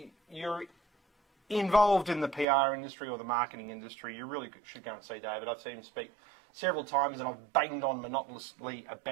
you're involved in the PR industry or the marketing industry, you really should go and see David. I've seen him speak several times and I've banged on monotonously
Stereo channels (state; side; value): drops out; left; at 2.5 s